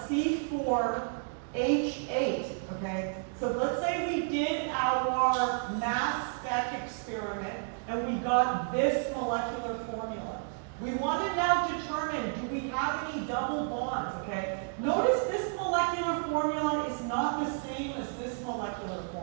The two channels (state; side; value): silent; left; 57 dB below the other